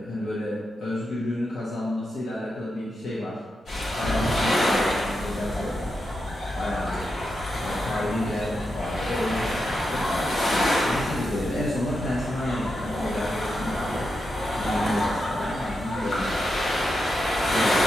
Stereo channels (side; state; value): both; normal; correlation 0.87